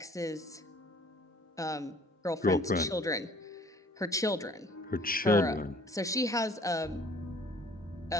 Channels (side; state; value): both; normal; correlation 0.54